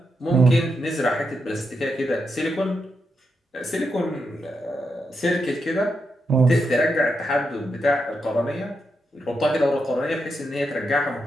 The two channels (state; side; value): normal; both; correlation 0.84